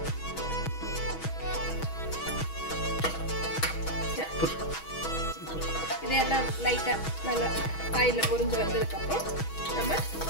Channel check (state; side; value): late; right; 6.2 ms